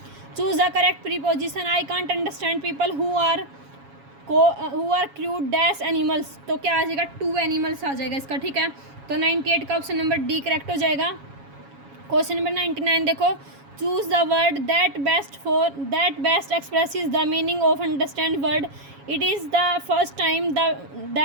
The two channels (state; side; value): late; left; 7.2 ms